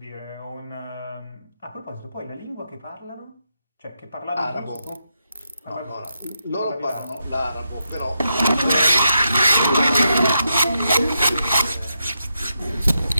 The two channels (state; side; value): inverted; both; correlation -0.84